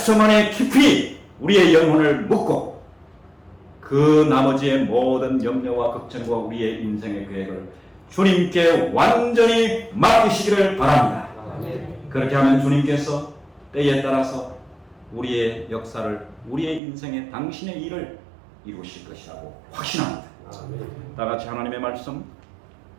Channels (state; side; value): drops out; left; at 16.8 s